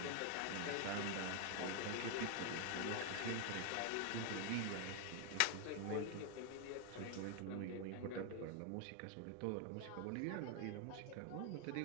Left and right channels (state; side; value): different; both; correlation 0.01